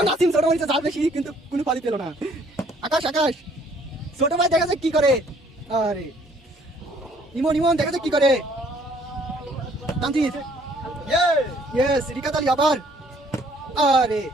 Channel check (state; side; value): normal; both; correlation 0.61